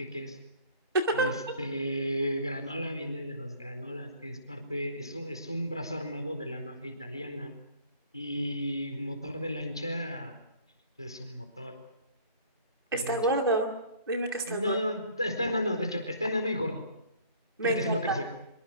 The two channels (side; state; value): both; inverted; correlation -0.52